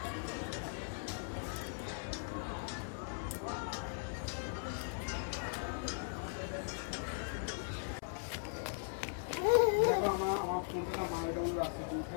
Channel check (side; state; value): right; silent; 52 dB below the other